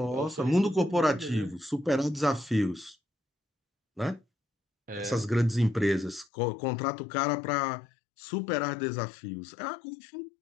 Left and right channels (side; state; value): right; drops out; at 6.2 s